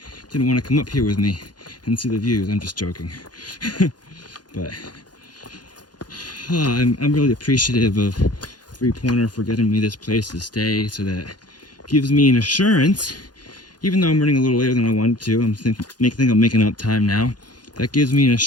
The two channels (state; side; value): late; right; 0.70 ms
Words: Didn't want to come up here with me and see the views. I'm just joking. But I'm really appreciative of 3-pointer for getting me this place to stay, so that gives me an assurance, even though I'm running a little later than I wanted to. I think I'm making up time now. That gives me an